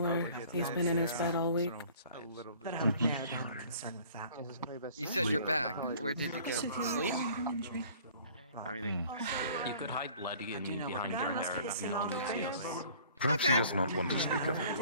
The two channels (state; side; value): inverted; both; correlation -0.51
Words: He's been in his bed all week. But I would narrow down the concern with that. You said you're back. Where did you go? Sleep? You could hide bloody and behind your hair. No one would see us. Perhaps he does not want to speak of it.